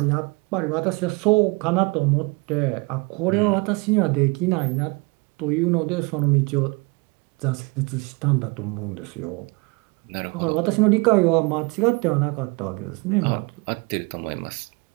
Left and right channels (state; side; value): quieter; left; 28.3 dB